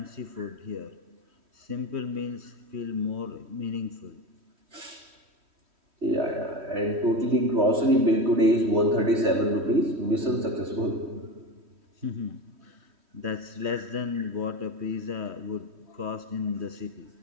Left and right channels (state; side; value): late; left; 3.1 ms